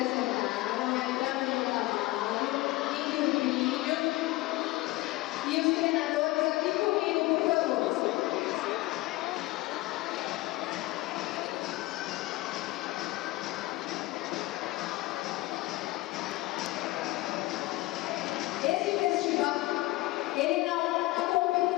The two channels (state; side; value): quieter; right; 19.7 dB